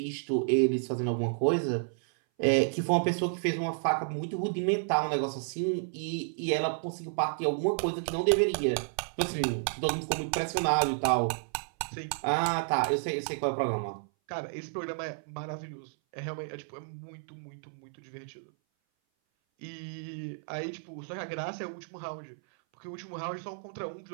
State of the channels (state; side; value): silent; left; 57 dB below the other